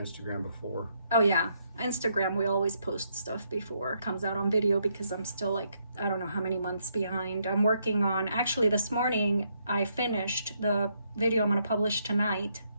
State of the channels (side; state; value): both; inverted; correlation -0.75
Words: before. Oh yeah, Instagram, we always post stuff before it comes out on video, because I'm still like, I don't know how many months behind. I'm working on, actually this morning I finished the video I'm going to publish tonight,